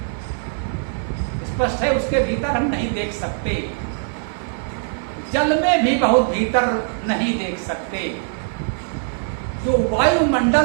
स्पष्ट है, उसके भीतर हम नहीं देख सकते। जल में भी बहुत भीतर नहीं देख सकते। जो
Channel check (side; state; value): left; silent; digital silence